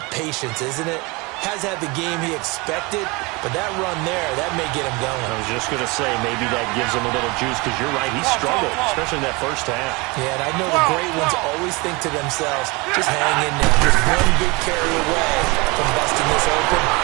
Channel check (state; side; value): quieter; left; 26.2 dB